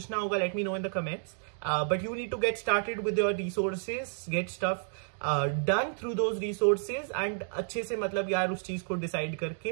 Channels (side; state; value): left; silent; digital silence